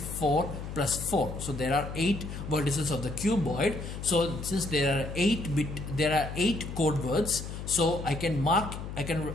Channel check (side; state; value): left; noise; hum, 8 dB below the sound